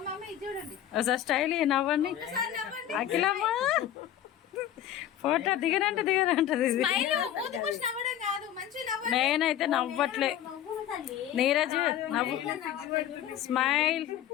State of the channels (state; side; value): quieter; right; 11.3 dB